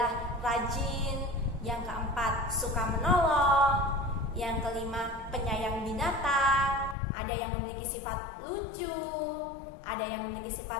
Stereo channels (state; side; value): drops out; right; at 7.0 s